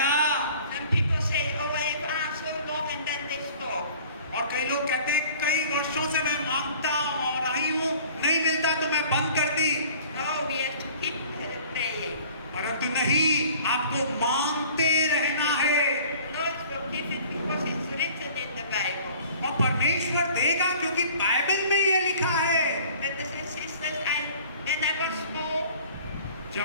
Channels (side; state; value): both; inverted; correlation -0.49